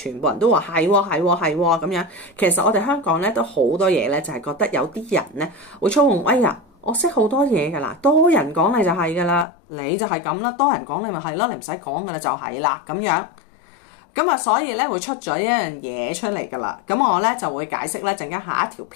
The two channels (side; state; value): right; drops out; at 9.5 s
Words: 部人都話係咁樣。其實我哋香港咧都好多嘢咧，就係覺得有啲人咧會操控。哎呀，我識好多嘢㗎啦，多人講你就係㗎啦，你就係咁啦，多人講你咪係咯，你唔使講㗎啦，就係啦咁樣。咁啊，所以咧會出咗一樣嘢出嚟噶啦。咁我咧就會解釋咧，陣間下一條